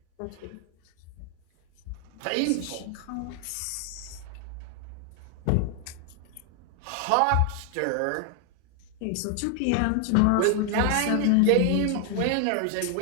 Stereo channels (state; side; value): different; both; correlation 0.00